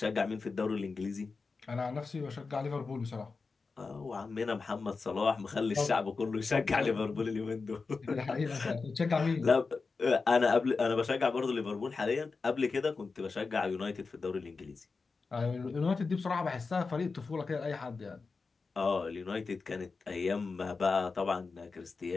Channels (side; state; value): right; quieter; 4.4 dB